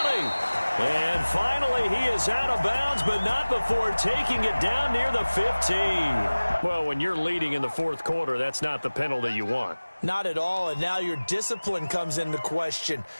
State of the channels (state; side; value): inverted; both; correlation -1.00